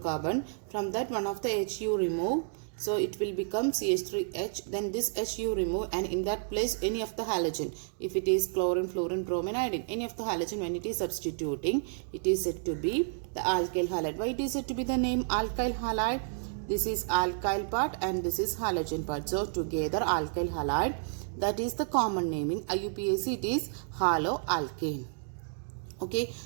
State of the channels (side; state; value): left; silent; digital silence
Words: From that, one of the H you remove. So it will become CH3H. Then this H you remove, and in that place any of the halogen. If it is chlorine, fluorine, bromine, iodine, any of the halogen, when it is substituting, it is said to be the alkyl halide. Why it is said to be the name alkyl halide? This is alkyl part and this is halogen part. So together alkyl halide, that is the common naming. IUPAC, it is haloalkane. Okay,